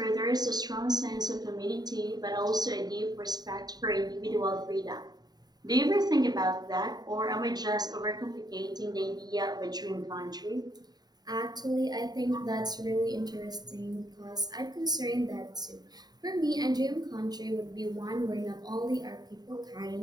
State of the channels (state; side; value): late; left; 0.20 ms